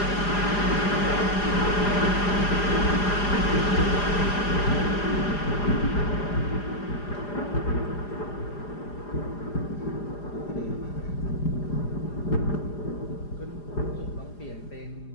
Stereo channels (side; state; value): right; late; 4.9 ms